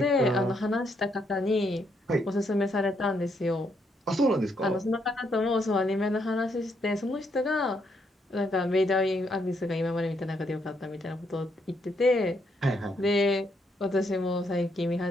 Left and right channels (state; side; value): normal; both; correlation 0.75